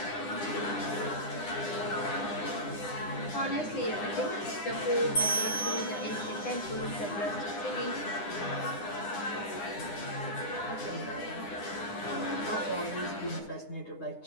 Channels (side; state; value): right; late; 9.8 ms